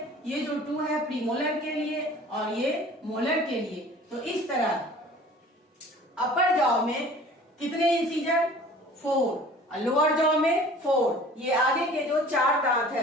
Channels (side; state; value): both; normal; correlation 0.47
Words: ये जो 2 है प्रीमोलर के लिए और ये मोलर के लिए। तो इस तरह अपर जॉ में कितने इंसीजर? 4, लोअर जॉ में 4। ये आगे के जो 4 दांत